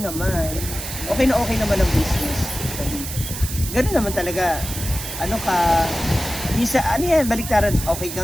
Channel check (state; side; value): noise; right; hiss, 8 dB below the sound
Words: naman. Okay naman ang business. Ganun naman talaga. Ano ka, ano yan, baliktaran, okay